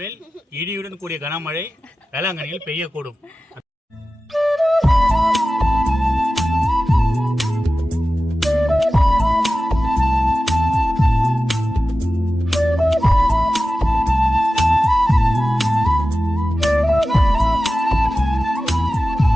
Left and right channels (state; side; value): normal; both; correlation 0.94